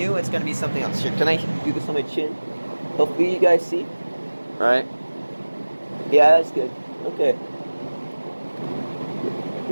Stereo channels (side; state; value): both; inverted; correlation -1.00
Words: it's gonna be something else. Here, can I do this on my chin? Hopefully you guys see. All right. Yeah, that's good. Okay.